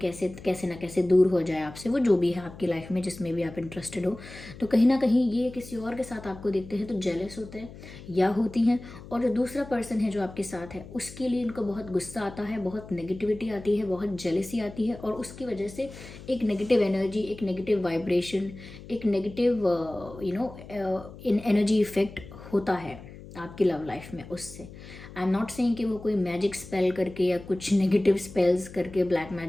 कैसे ना कैसे दूर हो जाए आपसे, वो जो भी है आपकी लाइफ में जिसमें भी आप इंटरेस्टेड हो। तो कहीं ना कहीं ये किसी और के साथ आपको देखते हैं तो जेलस होते हैं या होती हैं, और जो दूसरा पर्सन है जो आपके साथ है उसके लिए इनको बहुत गुस्सा आता है, बहुत नेगेटिविटी आती है, बहुत जेलसी आती है, और उसकी वजह से एक नेगेटिव एनर्जी, एक नेगेटिव वाइब्रेशन, एक नेगेटिव इन एनर्जी इफेक्ट होता है आपकी लव लाइफ में उससे। आई एम नॉट सेइंग कि वो कोई मैजिक स्पेल करके या कुछ नेगेटिव स्पेल्स करके, ब्लैक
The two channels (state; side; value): noise; left; hum, 16 dB below the sound